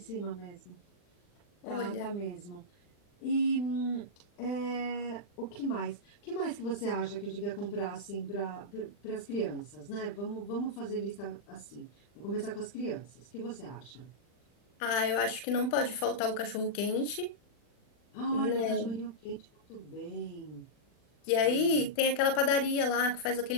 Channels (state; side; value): late; right; 40 ms